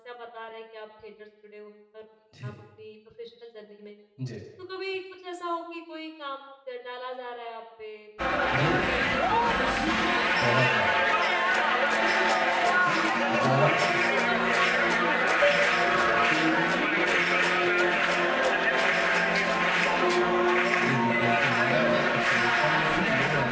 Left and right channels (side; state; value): both; identical; correlation 1.00